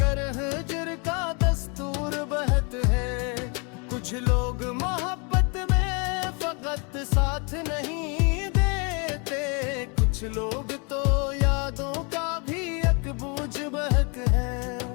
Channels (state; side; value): quieter; right; 33.4 dB